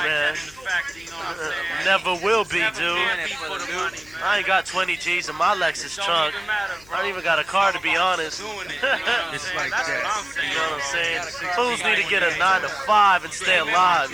man. that in the factory, you know what I'm saying? Never will be, Never dude. can be for the money, I man. ain't got 20 G's in my Lexus Don't trunk. even matter, bro. I don't even got a car to be honest. Doing it, you know what I'm It's saying? like That's that. what I'm saying. You know what I'm saying? Bro. Fools need to get a 9 to 5 and stay alive,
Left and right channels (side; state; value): left; noise; hum, 25 dB below the sound